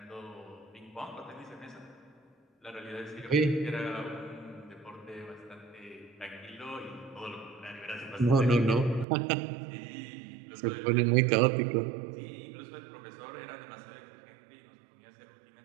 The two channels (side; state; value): left; drops out; at 9.1 s